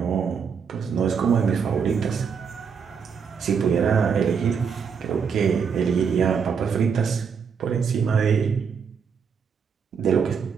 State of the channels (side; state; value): left; quieter; 6.4 dB